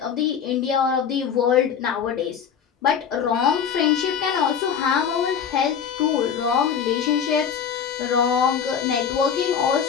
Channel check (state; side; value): quieter; right; 7.5 dB